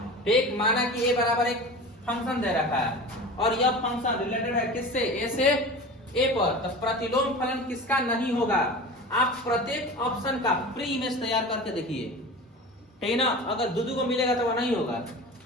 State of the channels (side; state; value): both; normal; correlation 0.34